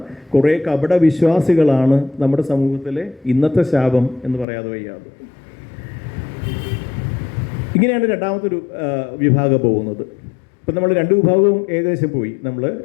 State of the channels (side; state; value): right; drops out; at 4.5 s